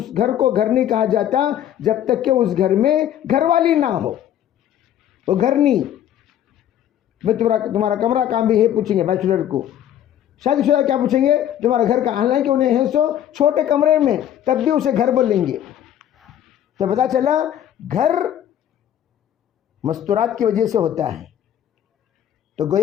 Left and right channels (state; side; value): quieter; right; 10.9 dB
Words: گھر کو گھر نہیں کہا جاتا جب تک کہ اس گھر میں گھر والی نہ ہو، وہ گھر نہیں۔ بھائی تمہارا کمرہ کام بھی ہے پوچھیں گے بیچلر کو. شادی شدہ کیا پوچھیں گے؟ تمہارا گھر کا، حالانکہ انہیں ہے سو چھوٹے کمرے میں تب بھی اسے گھر بولیں گے. تو پتا چلا گھر مستورات کی وجہ سے ہوتا ہے. تو